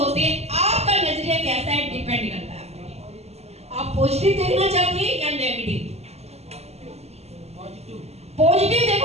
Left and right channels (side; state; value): left; late; 0.30 ms